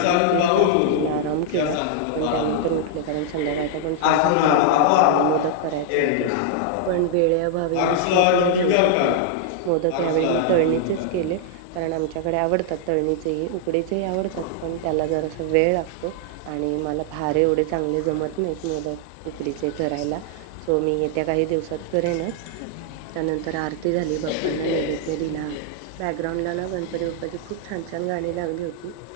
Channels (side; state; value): both; different; correlation -0.01